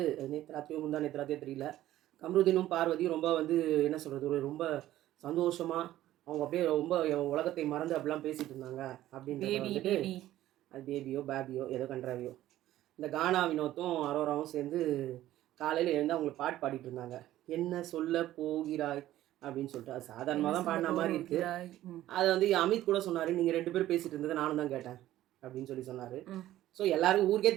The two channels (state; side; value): quieter; left; 14.1 dB